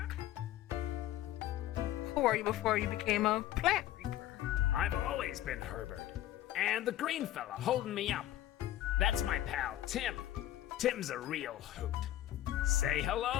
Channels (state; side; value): quieter; right; 13.2 dB